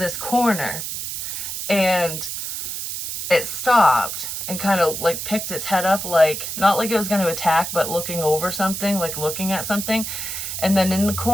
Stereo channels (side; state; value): right; noise; hiss, 5 dB below the sound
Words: corner. And it stopped and kind of like picked its head up, like not like it was going to attack, but looking over something, like looking at something. And then in the